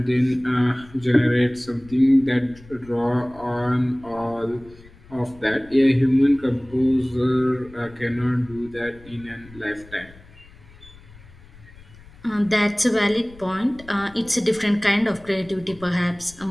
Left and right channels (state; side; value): noise; left; rumble, 22 dB below the sound